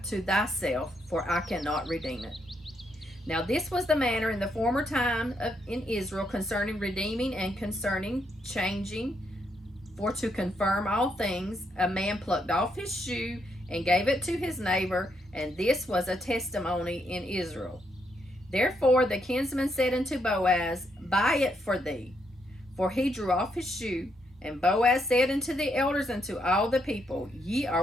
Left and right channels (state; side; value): normal; both; correlation 0.77